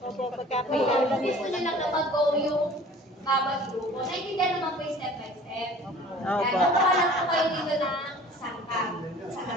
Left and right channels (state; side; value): normal; both; correlation 0.47